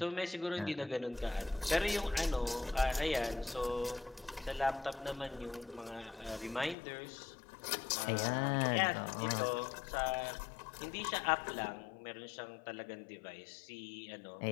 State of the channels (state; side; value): drops out; right; at 6.8 s